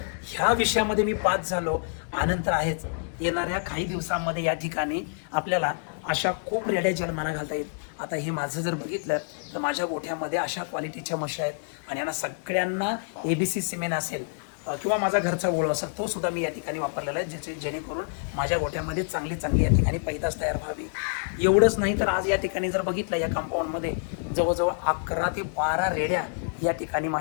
ह्या विषयामध्ये मी पास झालो, आनंद आहेच. येणाऱ्या काही दिवसांमध्ये या ठिकाणी आपल्याला अशा खूप रेड्या जन्माला घालता येईल. आता हे माझं जर बघितलं तर माझ्या गोठ्यामध्ये अशा क्वालिटीच्या म्हशी आहेत आणि यांना सगळ्यांना ABC सिमेंट असेल किंवा माझा घरचा ओळ असेल तो सुद्धा मी या ठिकाणी वापरलेला आहे जेणेकरून माझ्या गोठ्यामध्ये चांगली या ठिकाणी पैदास तयार व्हावी. एवढंच नाही तर आज या ठिकाणी जर बघितलं या कंपाऊंडमध्ये जवळजवळ 11 ते 12 रेड्या या ठिकाणी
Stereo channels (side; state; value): right; silent; digital silence